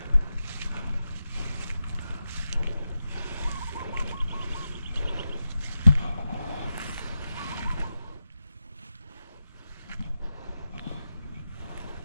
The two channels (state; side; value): inverted; both; correlation -0.90